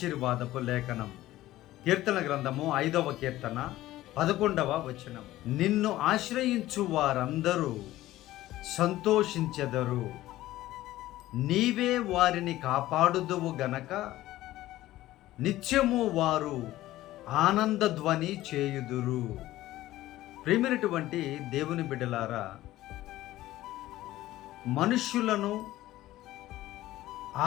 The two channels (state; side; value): quieter; right; 15.6 dB